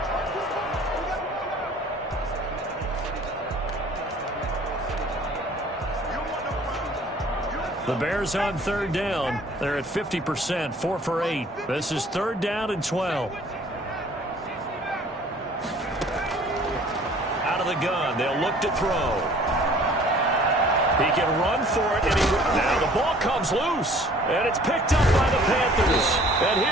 The Bears on 3rd down. They're at 50%, 4 for 8. This is 3rd down and 12. Out of the gun, they'll look to throw. He can run for it, and now the ball comes loose, and it's picked up by the Panthers. And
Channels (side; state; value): both; normal; correlation 0.53